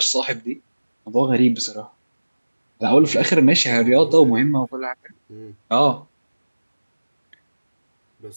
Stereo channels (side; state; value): both; inverted; correlation -1.00